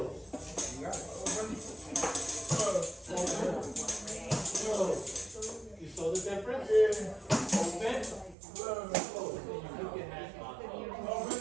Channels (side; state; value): left; drops out; at 8.3 s